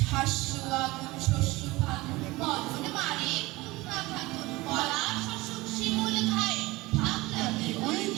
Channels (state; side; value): quieter; left; 20.8 dB